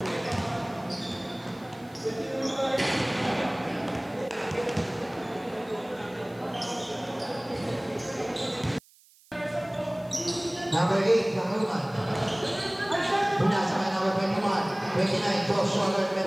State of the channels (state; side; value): noise; right; hiss, 28 dB below the sound